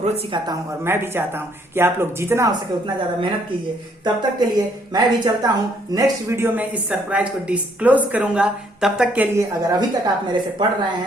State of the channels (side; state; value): both; normal; correlation 0.67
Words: सिखाता हूं और मैं भी चाहता हूं कि आप लोग जितना हो सके उतना ज्यादा मेहनत कीजिए। तब तक के लिए मैं भी चलता हूं, नेक्स्ट वीडियो में इस सरप्राइज को डिस्क्लोज करूंगा। तब तक के लिए अगर अभी तक आप मेरे से पढ़ रहे